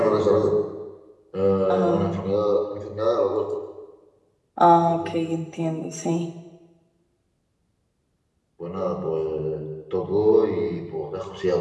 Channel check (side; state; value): both; identical; correlation 1.00